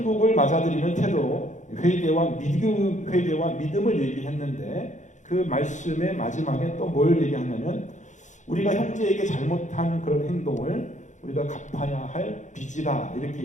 맞아들이는 태도, 회개와 믿음을 얘기했는데 그 말씀의 마지막에 또 뭘 얘기하냐면 우리가 형제에게 잘못한 그런 행동을 우리가 갚아야 할 빚이다 이렇게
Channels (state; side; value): late; right; 0.35 ms